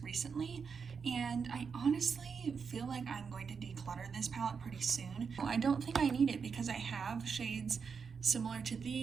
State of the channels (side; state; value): left; quieter; 5.9 dB